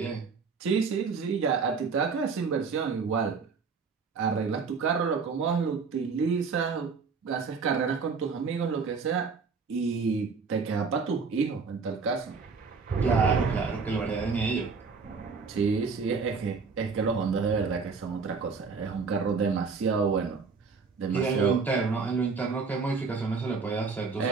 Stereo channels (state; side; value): quieter; left; 5.0 dB